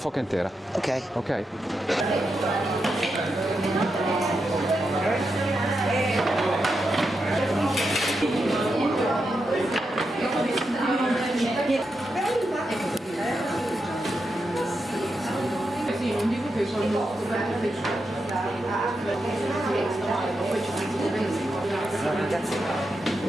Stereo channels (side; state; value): both; normal; correlation 0.86